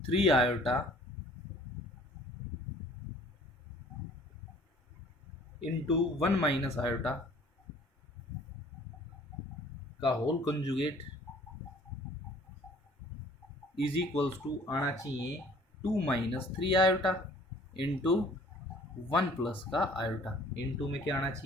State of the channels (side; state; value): both; normal; correlation 0.54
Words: 3 iota into 1 minus iota का whole conjugate is equals to आना चाहिए 2 माइनस 3 आयोटा इंटू 1 प्लस का आयोटा। इंटू में क्या आना